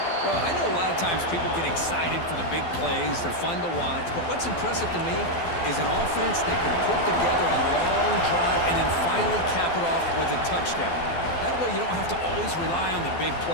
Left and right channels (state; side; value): late; right; 12 ms